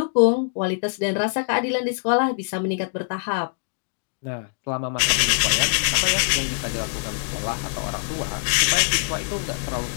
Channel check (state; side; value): silent; right; digital silence